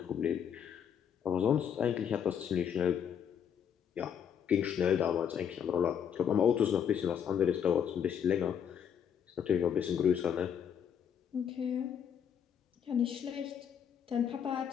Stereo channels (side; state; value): right; quieter; 8.2 dB